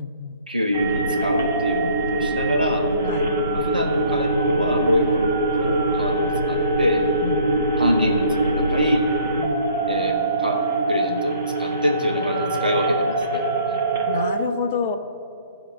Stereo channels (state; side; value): inverted; both; correlation -0.57